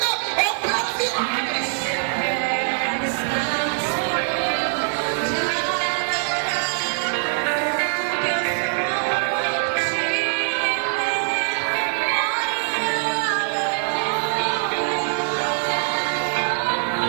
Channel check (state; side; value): silent; left; digital silence